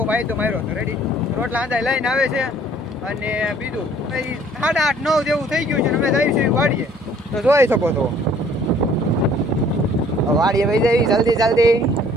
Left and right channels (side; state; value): both; normal; correlation 0.57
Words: ભાઈ તો માર્યો હતો રેડી, રોટલા આંધા લઈને આવે છે। અને બીજું 8:30-9 જેવું થઈ ગયું છે, અમે જઈએ છીએ વાડીએ, તો જોઈ શકો છો વાડીએ વહી જઈ જલ્દી જલ્દી